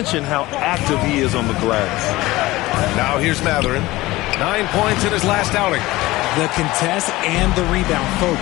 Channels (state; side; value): quieter; right; 18.9 dB